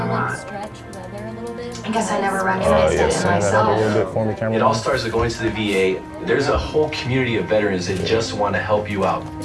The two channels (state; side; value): identical; both; correlation 1.00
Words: lot. I guess I never recognized Yeah, it in send that up a myself. little bit for me, It camera. all starts with going to the VA. There's a whole community of veterans that just want to help you out.